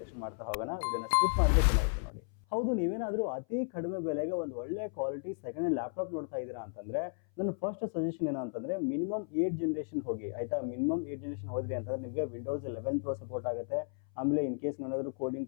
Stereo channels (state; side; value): silent; right; 55 dB below the other